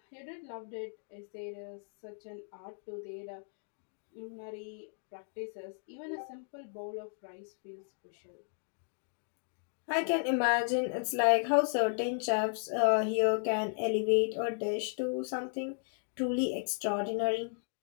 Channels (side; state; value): right; silent; digital silence